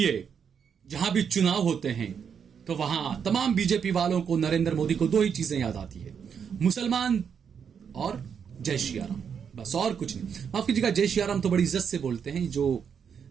जहां भी चुनाव होते हैं तो वहां तमाम बीजेपी वालों को नरेंद्र मोदी को दो ही चीजें याद आती है, मुसलमान और जय श्री राम, बस और कुछ नहीं। माफ कीजिएगा, जय श्री राम तो बड़ी इज्जत से बोलते हैं,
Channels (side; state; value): left; quieter; 7.2 dB